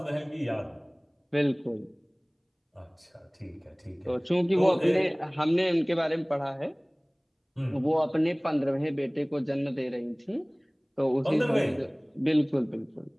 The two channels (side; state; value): both; identical; correlation 1.00